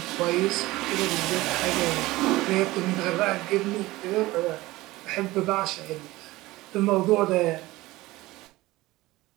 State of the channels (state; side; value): quieter; left; 18.9 dB